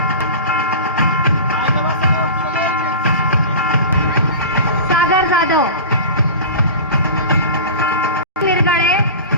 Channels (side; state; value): both; inverted; correlation -0.32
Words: सागर जाधव, मिरगाळे,